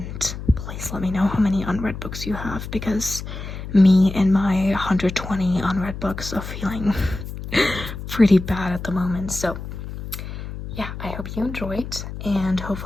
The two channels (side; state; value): left; noise; hum, 9 dB below the sound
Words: please let me know how many unread books you have, because me and my 120 unread books are feeling pretty bad at the moment. So yeah, I hope you enjoyed, and